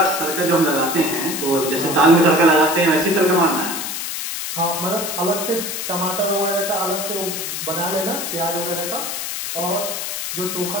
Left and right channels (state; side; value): noise; left; hiss, 4 dB below the sound